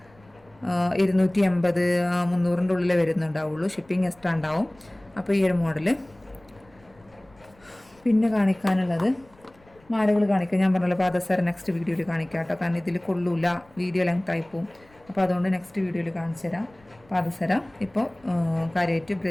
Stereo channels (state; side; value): noise; left; rumble, 29 dB below the sound